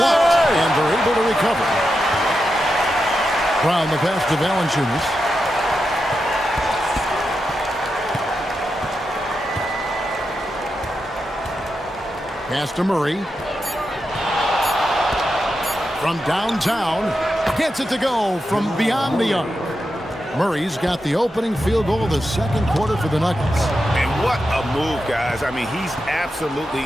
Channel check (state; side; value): normal; both; correlation 0.88